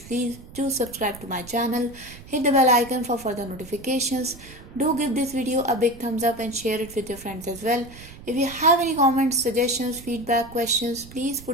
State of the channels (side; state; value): right; noise; rumble, 18 dB below the sound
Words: do subscribe to my channel, hit the bell icon for further notifications. Do give this video a big thumbs up and share it with your friends as well. If you have any comments, suggestions, feedback, questions, please